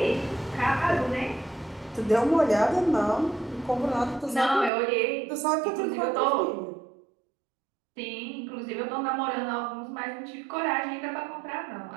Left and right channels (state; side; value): drops out; left; at 4.7 s